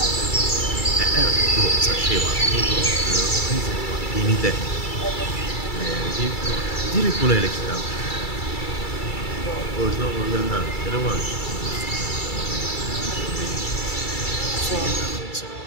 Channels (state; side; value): late; right; 2.3 ms